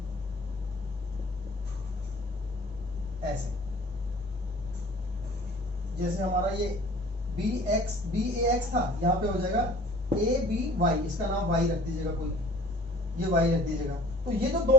ऐसे, जैसे हमारा ये बी ए एक्स था, यहाँ पे हो जाएगा ए बी वाई, इसका नाम वाई रख दीजिएगा कोई, ये y रख दीजिएगा। तो ये जो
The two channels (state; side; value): normal; both; correlation 0.49